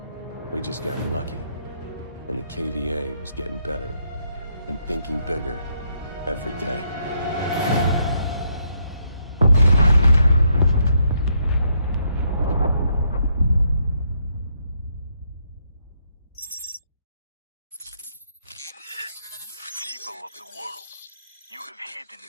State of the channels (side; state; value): both; inverted; correlation -0.75